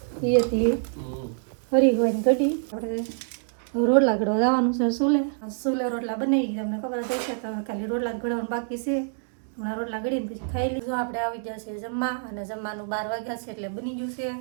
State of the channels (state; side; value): silent; left; digital silence